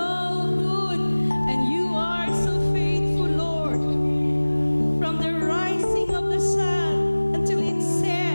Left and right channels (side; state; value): both; inverted; correlation -1.00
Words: good and you are so faithful, Lord. From the rising of the sun until it